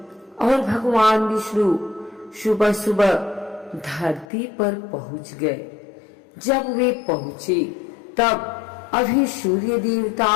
और भगवान विष्णु सुबह सुबह धरती पर पहुंच गए। जब वे पहुंचे तब अभी सूर्य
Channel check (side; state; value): right; drops out; at 4.2 s